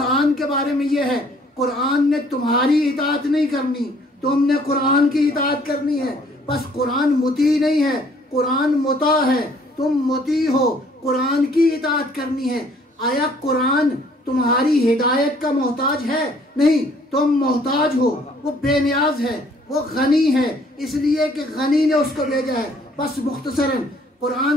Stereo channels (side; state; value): both; normal; correlation 0.60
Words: کے بارے میں یہ ہے، قرآن نے تمہاری اطاعت نہیں کرنی، تم نے قرآن کی اطاعت کرنی ہے۔ بس قرآن مطیع نہیں ہے، قرآن مطاع ہے، تم مطیع ہو، قرآن کی اطاعت کرنی ہے۔ آیا قرآن تمہاری ہدایت کا محتاج ہے؟ نہیں، تم محتاج ہو، وہ بے نیاز ہے، وہ غنی ہے، اس لیے کہ غنی نے اس کو بھیجا ہے۔ بس مختصراً